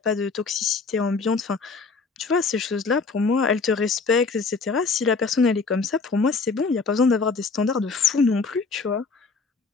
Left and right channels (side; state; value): right; quieter; 4.5 dB